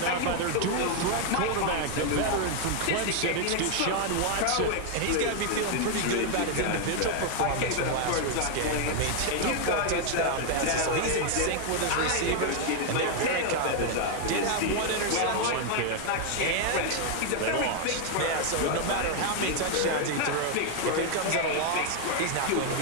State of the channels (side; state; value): both; different; correlation 0.00